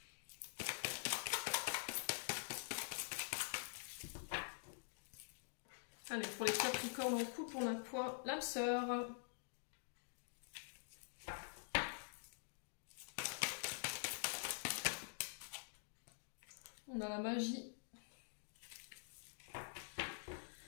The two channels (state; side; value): silent; right; digital silence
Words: Allez, pour les Capricornes en couple, on a quoi? L'âme sœur. On a la magie.